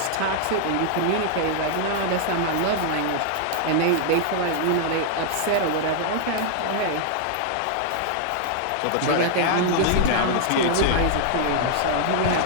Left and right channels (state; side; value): different; both; correlation 0.00